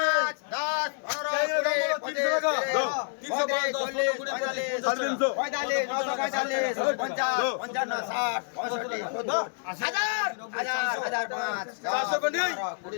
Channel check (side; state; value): right; silent; 59 dB below the other